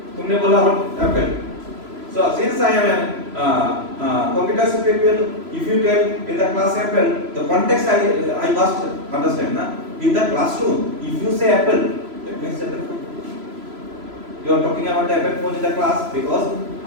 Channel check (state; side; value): late; left; 3.0 ms